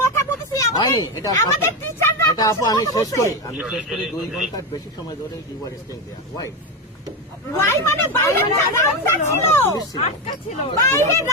কথা বলতেছি, হয়নি এটা আমাদের সত্য। টিচাররা এটা আপু আমি শেষ করি 2 ঘন্টার বেশি সময় ধরে you are staying there why why মানে বাইরে রামদা ছিল, আটকা ছিল। বাইরে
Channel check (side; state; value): both; normal; correlation 0.13